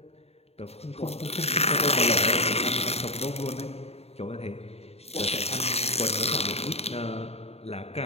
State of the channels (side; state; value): right; late; 0.30 ms